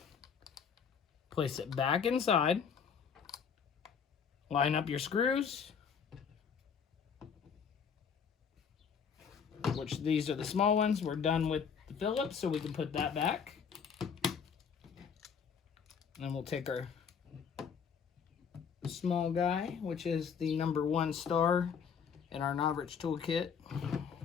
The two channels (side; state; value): right; quieter; 6.8 dB